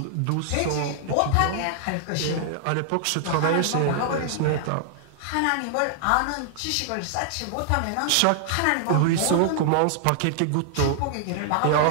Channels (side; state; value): both; different; correlation -0.01